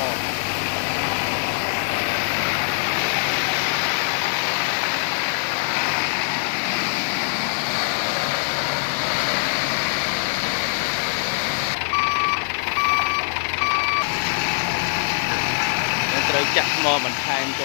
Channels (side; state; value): right; silent; 58 dB below the other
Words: ត្រូវចាក់ថ្មបន្ថែមច